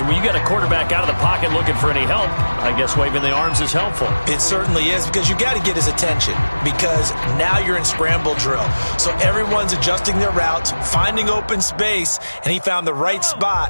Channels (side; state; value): both; inverted; correlation -1.00